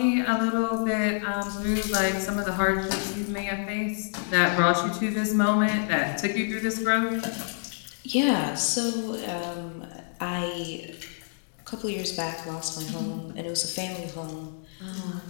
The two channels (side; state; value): right; silent; digital silence